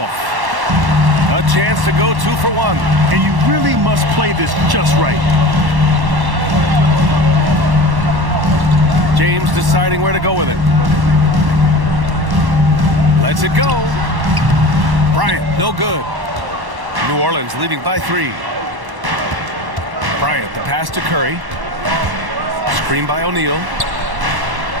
A chance to go 2 for 1. And you really must play this just right. James deciding where to go with it. Lets it go. Bryant, no good. New Orleans leading by 3. Bryant, the pass to Curry. Screen by O'Neal.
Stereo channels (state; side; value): late; left; 1.1 ms